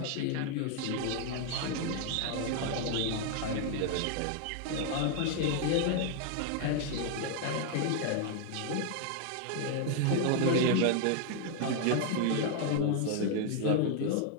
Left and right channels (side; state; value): both; different; correlation 0.00